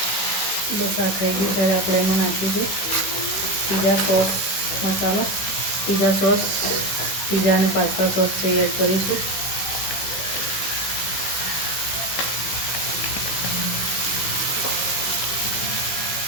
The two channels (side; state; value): right; late; 16 ms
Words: બસ આ થઈ ગયું છે. આપણે એમાં નાખીશું પીઝા સોસ મસાલો. પીઝા સોસ, પીઝા અને પાસ્તા સોસ છે એડ કરીશું.